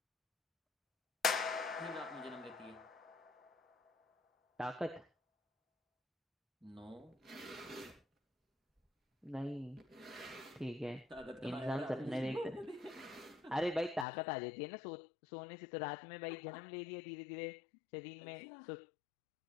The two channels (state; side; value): drops out; right; at 14.1 s